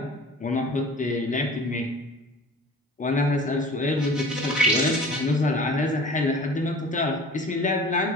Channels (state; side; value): normal; both; correlation 0.43